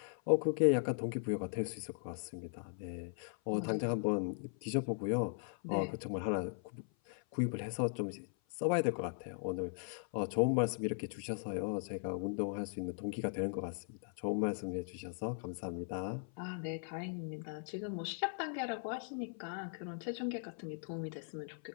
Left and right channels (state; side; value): silent; right; 52 dB below the other